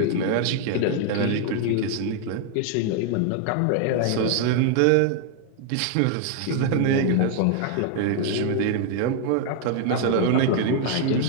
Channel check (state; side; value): different; both; correlation 0.00